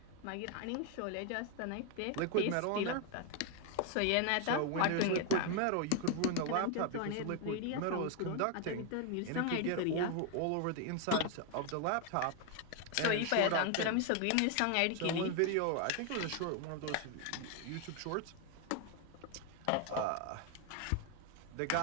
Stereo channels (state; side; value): different; both; correlation 0.01